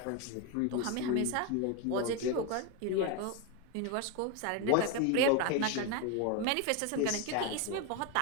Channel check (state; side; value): different; both; correlation 0.02